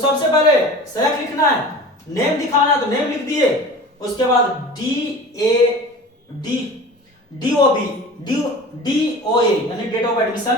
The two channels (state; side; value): normal; both; correlation 0.38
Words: पहले सेलेक्ट लिखना है, नेम दिखाना है तो नेम लिख दिए, उसके बाद DOA यानी date of admission